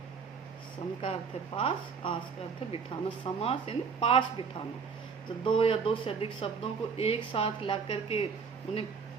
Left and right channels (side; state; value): left; quieter; 5.8 dB